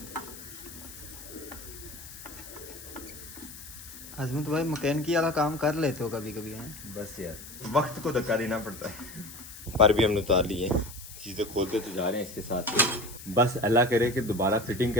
आजमत भाई मैकेनिकी वाला काम कर लेते हो कभी कभी हैं? बस यार वक्त को धक्का देना पड़ता है। पर भी हमने उतार ली है, चीज़ें खोलते तो जा रहे हैं इसके साथ। बस अल्लाह करे कि दोबारा फिटिंग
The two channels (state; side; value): noise; left; hiss, 15 dB below the sound